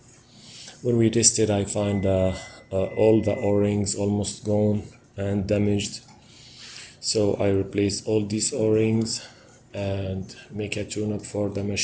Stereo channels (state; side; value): identical; both; correlation 1.00